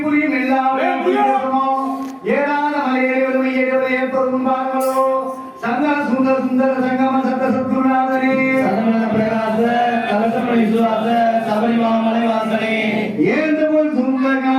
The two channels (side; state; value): both; identical; correlation 1.00